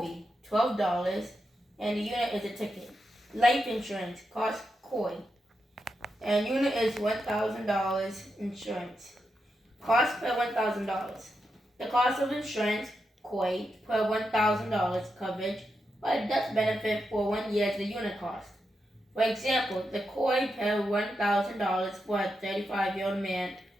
be $12, and the unit is a ticket. Life insurance costs KOI, and unit is $1,000 insurance. Cost per $1,000. The cost of insurance KOI per $1,000 coverage, but death benefit for 1 year is the unit cost. For example, the KOI per $1,000 for a 35-year-old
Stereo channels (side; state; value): both; normal; correlation 0.86